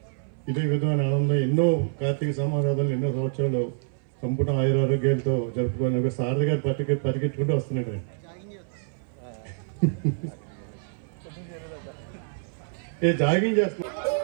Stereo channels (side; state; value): left; silent; 57 dB below the other